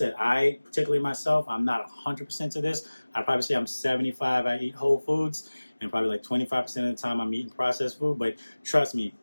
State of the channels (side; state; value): both; inverted; correlation -1.00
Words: I, particularly myself, I'm not 100% to this. I'd probably say I'm 75. I eat whole foods, and probably like 25% of the time I'm eating processed food. But trust me,